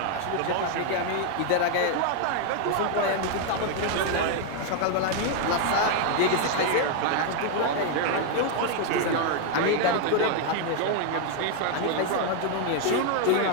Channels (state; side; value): different; both; correlation 0.00